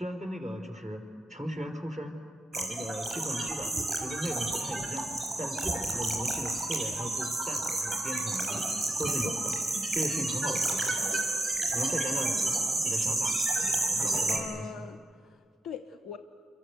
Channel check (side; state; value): both; normal; correlation 0.86